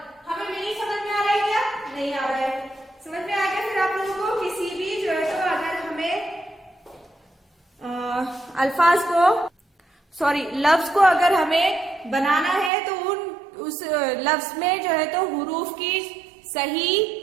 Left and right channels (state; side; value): drops out; left; at 12.7 s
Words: हमें नहीं समझ में आ रहा है क्या? नहीं आ रहा है। समझ में आ गया? फिर आप लोगों को किसी भी जो है तो अगर हमें अल्फाज को लफ्ज को अगर हमें बनाना है तो उस लफ्ज में जो है तो हुरूफ की सही